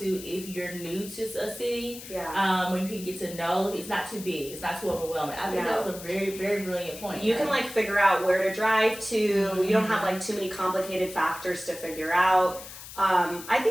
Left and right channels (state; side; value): noise; left; hiss, 13 dB below the sound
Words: if you're new to a city. When you can get to know, it's not too big, it's not too overwhelming. I think that was a very, very brilliant point. You can like figure out where to drive to. You don't have like too many complicated factors to figure out. I